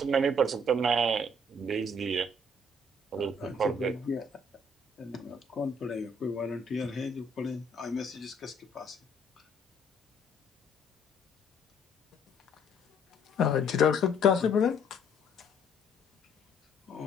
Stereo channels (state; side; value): normal; both; correlation 0.63